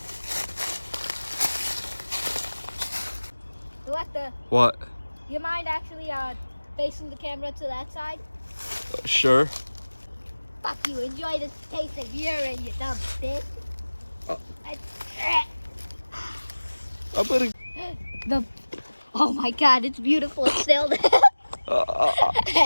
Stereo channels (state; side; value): inverted; both; correlation -1.00